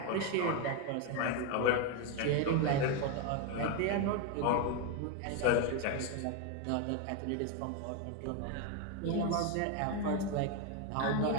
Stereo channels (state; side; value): different; both; correlation 0.02